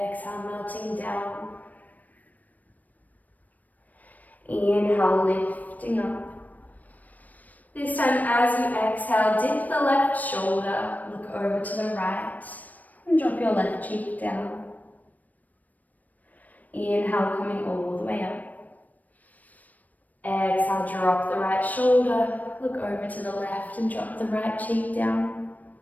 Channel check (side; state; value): right; late; 0.078 ms